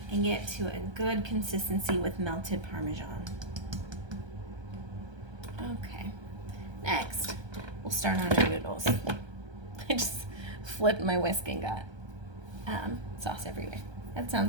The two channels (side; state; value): left; late; 1.3 ms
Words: and get to a good consistency with melted Parmesan. Okay, next we'll start on our noodles. I just flipped my whisk and got sauce everywhere. That